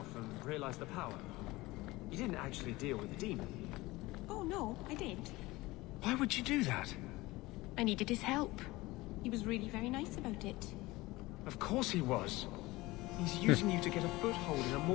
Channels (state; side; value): quieter; right; 20.3 dB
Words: and realized the power. You didn't actually deal with the demon. Oh, no, I did. Why would you do that? I needed his help. He was really very nice about it. Of course he was. He's using you to get a foothold in a